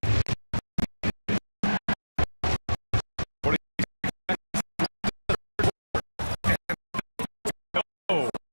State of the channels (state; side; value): inverted; both; correlation -1.00